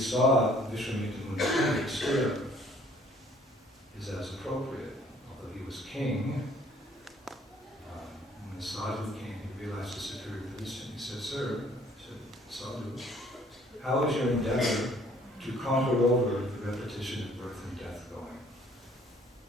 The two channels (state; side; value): normal; both; correlation 0.59